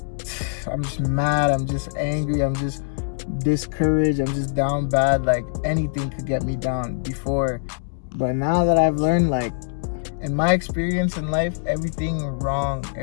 I'm just mad, I'm just angry, I'm just discouraged, I'm just down bad. Like, anything could get me down before. But now that I've learned, like, in my experience in life, everything wrong,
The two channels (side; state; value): right; silent; digital silence